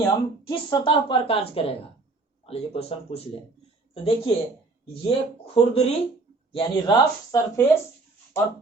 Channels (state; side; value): quieter; left; 3.6 dB